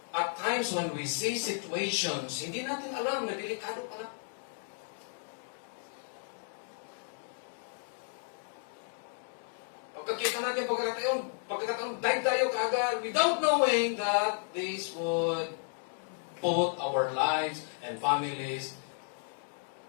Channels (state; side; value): silent; right; 56 dB below the other